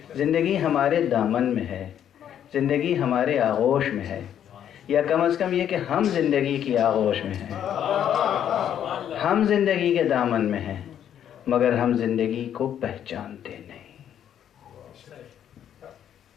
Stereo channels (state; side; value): quieter; right; 9.8 dB